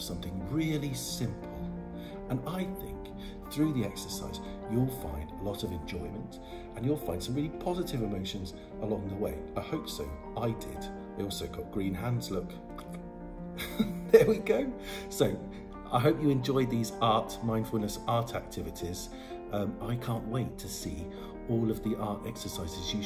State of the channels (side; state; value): both; identical; correlation 1.00